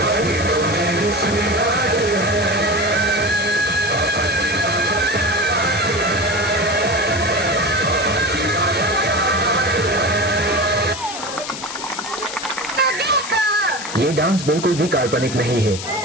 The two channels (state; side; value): noise; left; hiss, 9 dB below the sound